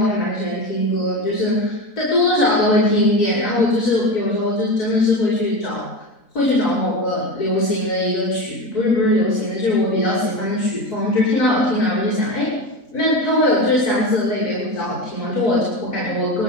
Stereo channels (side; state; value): right; late; 4.0 ms